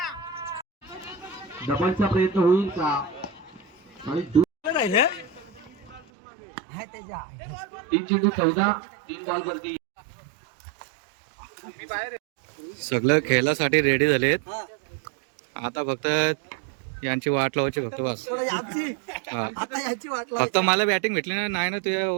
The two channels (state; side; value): drops out; left; at 6.0 s